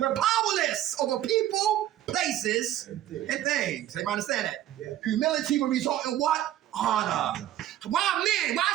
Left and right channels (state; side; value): quieter; left; 12.7 dB